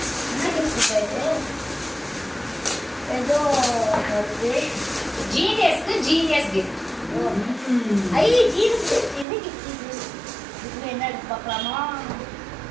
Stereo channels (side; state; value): left; drops out; at 9.2 s